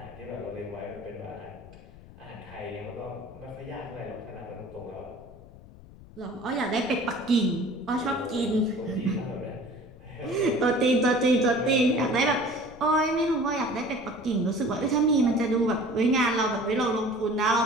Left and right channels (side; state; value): left; noise; rumble, 20 dB below the sound